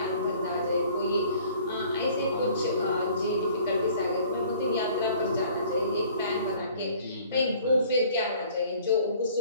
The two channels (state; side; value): inverted; both; correlation -0.53